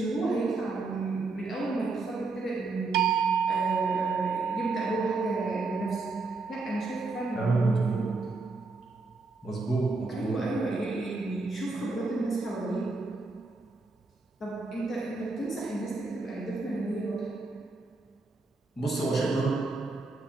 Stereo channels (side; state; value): left; quieter; 3.6 dB